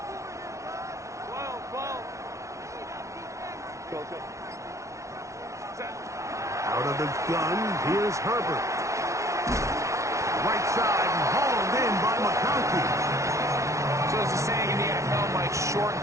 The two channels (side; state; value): left; late; 0.14 ms